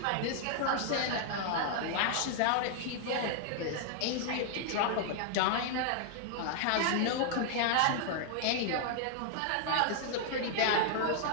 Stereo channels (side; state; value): both; different; correlation 0.00